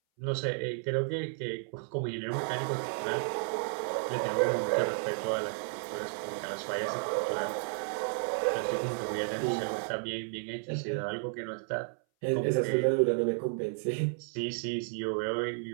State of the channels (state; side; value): silent; left; 56 dB below the other